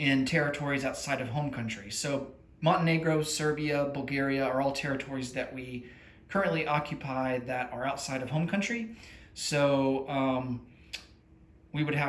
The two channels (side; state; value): both; identical; correlation 1.00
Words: territories outside of home country. So Montenegro, Serbia, Bulgaria are all territories that we currently occupy that are outside of home country. So we would